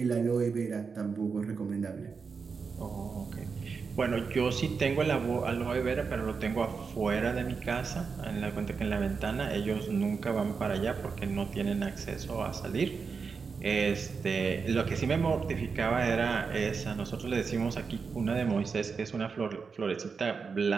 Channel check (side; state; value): left; quieter; 5.3 dB